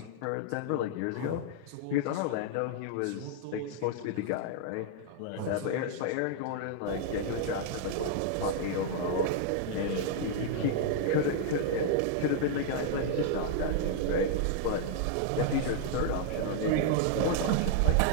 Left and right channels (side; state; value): both; different; correlation -0.01